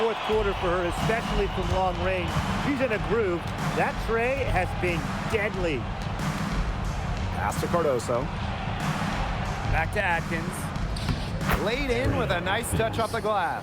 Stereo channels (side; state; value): both; identical; correlation 1.00